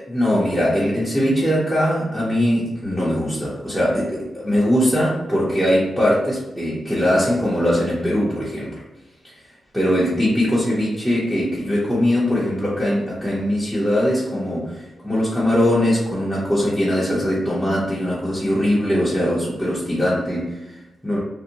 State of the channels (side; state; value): both; normal; correlation 0.89